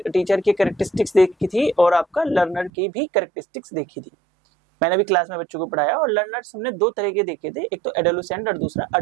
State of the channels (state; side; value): drops out; left; at 2.7 s